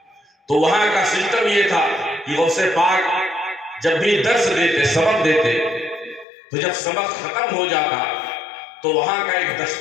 تو وہاں کا سسٹم یہ تھا کہ غوث پاک جب بھی درس دیتے، سبق دیتے، تو جب سبق ختم ہو جاتا تو وہاں کا ایک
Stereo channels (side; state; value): right; drops out; at 6.2 s